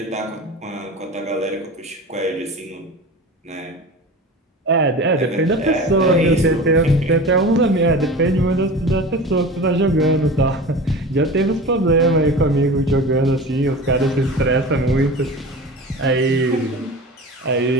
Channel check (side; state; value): both; normal; correlation 0.34